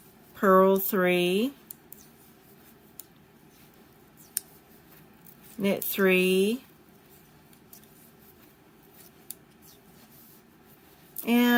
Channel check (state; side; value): identical; both; correlation 1.00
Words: purl 3, knit 3,